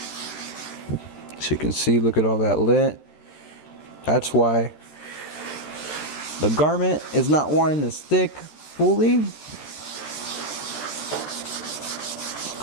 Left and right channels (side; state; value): right; late; 13 ms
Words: So you can see, look at all that lint. That's why the garment is not wanting to stick fully. The